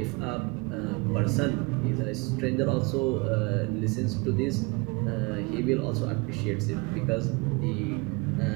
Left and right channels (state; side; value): quieter; left; 27.5 dB